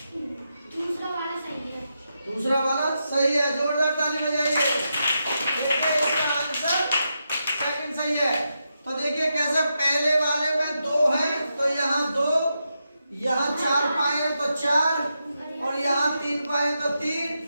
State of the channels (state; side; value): inverted; both; correlation -0.86